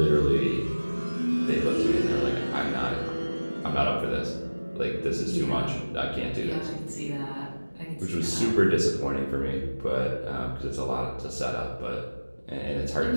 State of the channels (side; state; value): both; inverted; correlation -1.00